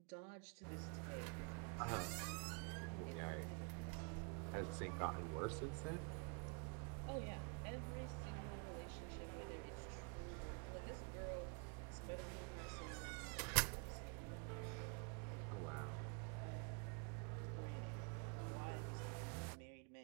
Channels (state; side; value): quieter; left; 36.2 dB